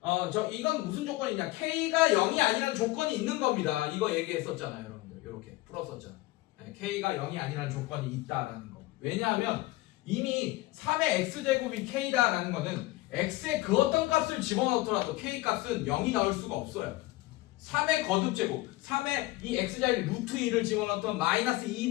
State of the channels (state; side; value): quieter; right; 19.2 dB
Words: 이건 무슨 조건이냐? k가 0이 아니라는 조건이 있는 겁니다. 이거 얘기했었잖아요, 여러분들. 이렇게 풀었었잖아요. k가 0이 아니라는 조건이 있다라는 거. 왜냐하면 이미 3의 x제곱이 k다라는 거는 x의 그 어떤 값을 집어넣더라도 k 값은 0이 나올 수가 없어요. 3의 거듭제곱, 3의 이 x자리 루트 2를 집어넣던 마이너스